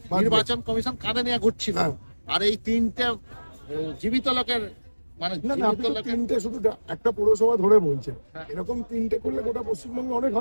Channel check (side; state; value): both; inverted; correlation -1.00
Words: নির্বাচন কমিশন কাঁধে নিয়ে ঘুরছিল। আর এই তিনটে জীবিত লোকের, মানে না না, আপনি তো তিনটে শুধু একটা পৌরসভা ধরে বলছেন, এরকম তিনটে করলে গোটা পশ্চিমবঙ্গে অনেক